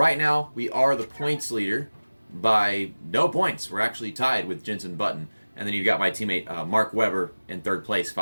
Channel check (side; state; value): both; inverted; correlation -1.00